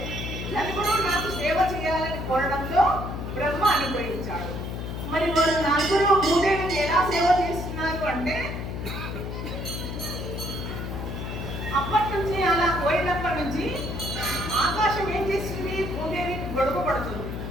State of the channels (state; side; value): noise; left; hum, 6 dB below the sound